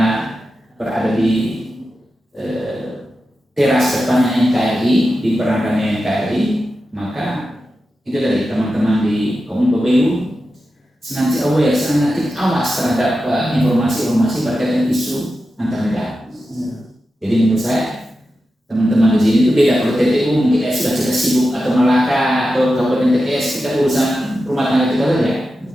berada di teras depannya NKRI, di berangkatnya NKRI, maka itu dari teman-teman di Kominfo BU senantiasa aware, senantiasa awas terhadap informasi-informasi berkaitan isu antar negara. Jadi menurut saya teman-teman di sini itu beda. Kalau TTU mungkin sudah kita sibuk atau Malaka atau Kabupaten TTS kita urusan rumah tangga kita saja.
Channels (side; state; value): both; normal; correlation 0.91